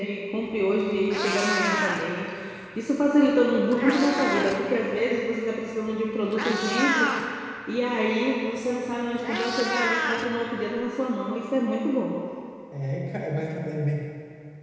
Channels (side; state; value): both; identical; correlation 1.00